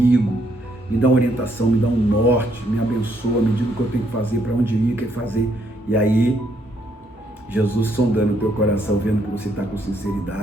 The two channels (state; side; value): normal; both; correlation 0.72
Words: me dá uma orientação, me dá um norte, me abençoa, me diga o que eu tenho que fazer, para onde ir, o que fazer. E aí, Jesus sondando o teu coração, vendo que você está com